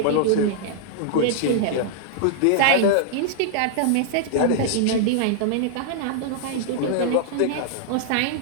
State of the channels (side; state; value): both; different; correlation -0.01